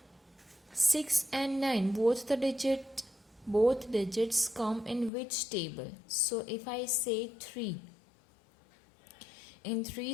6 and 9 both digits come in which table? So if I say 3, in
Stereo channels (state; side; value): drops out; right; at 5.1 s